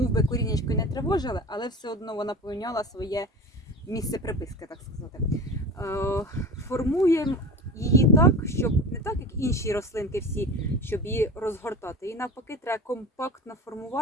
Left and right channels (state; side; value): normal; both; correlation 0.33